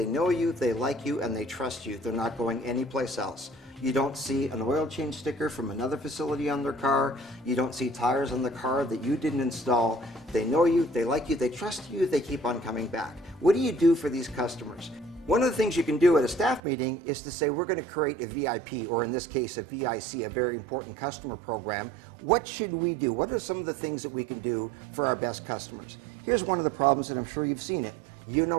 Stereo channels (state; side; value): drops out; left; at 16.6 s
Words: know you, they like you, and they trust you. They're not going anyplace else. You don't see an oil change sticker from another facility on their car. You don't see tires on the car that you didn't install. They know you, they like you, they trust you, they keep on coming back. What do you do for these customers? One of the things you can do at a staff meeting is to say, we're going to create a VIP, or in this case, a V.I.C, a very important customer program. What should we do? What are some of the things that we can do for our best customers? Here's one of the problems, and I'm sure you've seen it. You